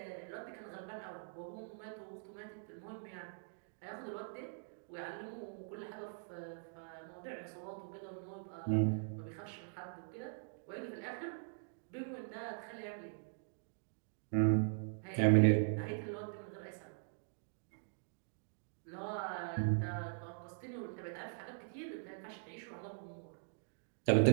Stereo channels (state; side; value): silent; left; digital silence